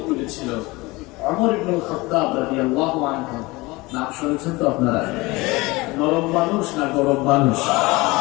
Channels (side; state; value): right; quieter; 22.5 dB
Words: তুলেছিল। ওমর ইবনে খাত্তাব রাদিয়াল্লাহু আনহু, নাম শুনেছেন তো আপনারা? নরম মানুষ না গরম মানুষ?